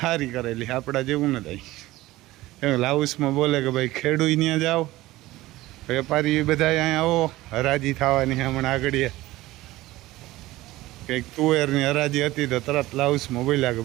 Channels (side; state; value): left; quieter; 17.7 dB